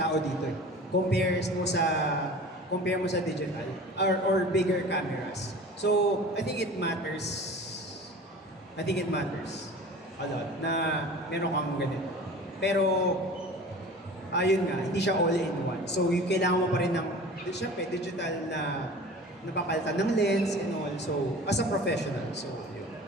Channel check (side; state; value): both; normal; correlation 0.40